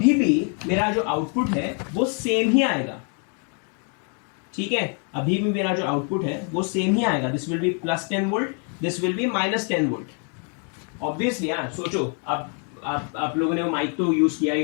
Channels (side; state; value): right; quieter; 39.1 dB